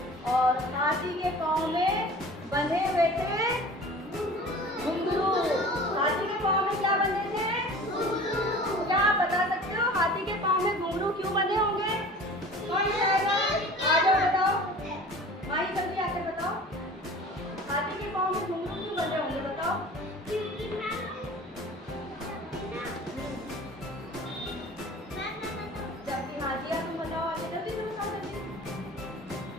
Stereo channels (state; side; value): normal; both; correlation 0.42